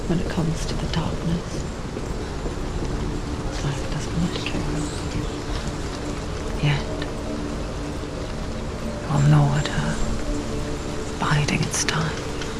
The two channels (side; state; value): both; identical; correlation 1.00